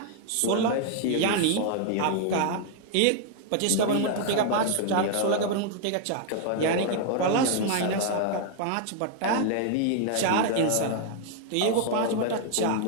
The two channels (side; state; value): both; different; correlation 0.00